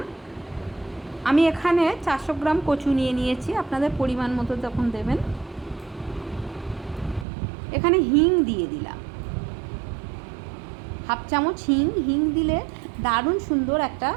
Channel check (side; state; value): left; drops out; at 7.2 s